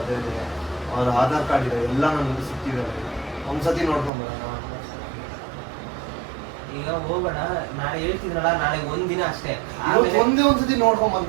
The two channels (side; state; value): left; drops out; at 4.1 s